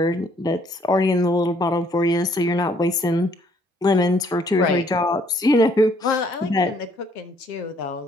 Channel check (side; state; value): both; normal; correlation 0.65